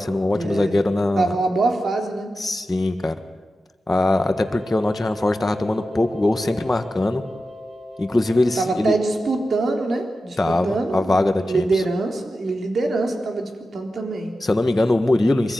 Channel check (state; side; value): normal; both; correlation 0.92